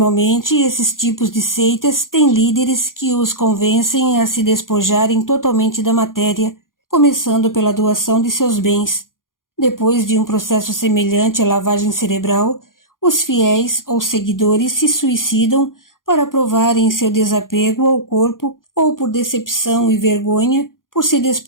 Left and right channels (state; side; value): late; right; 0.90 ms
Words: esses tipos de seitas têm líderes que os convencem a se despojarem totalmente da matéria, começando pela doação de seus bens. Depois de um processo semelhante à lavagem cerebral, os fiéis ou seguidores se suicidam para provarem seu desapego ao corpo ou por decepção e vergonha por se